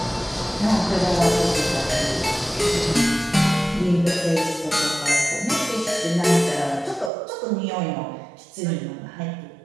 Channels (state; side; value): drops out; left; at 7.1 s